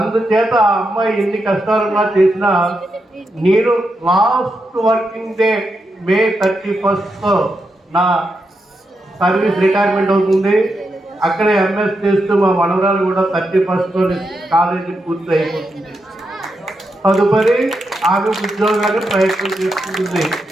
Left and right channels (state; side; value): normal; both; correlation 0.85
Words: ఆ అమ్మాయి ఎన్ని కష్టాలున్నా చేసినా నేను లాస్ట్ వర్కింగ్ డే May 31 నా సర్వీస్ రిటైర్మెంట్ అవుతుంది. అక్కడే MS చేస్తూ మా మనవరాలు కూడా 31 కాలేజీ పూర్తి అయిపోతుంది. తదుపరి ఆమె ఉద్యోగాన్ని ప్రయత్నం చేస్తుంది.